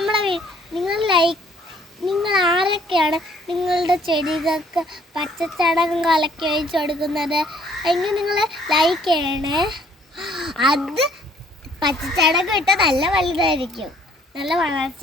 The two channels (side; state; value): both; normal; correlation 0.61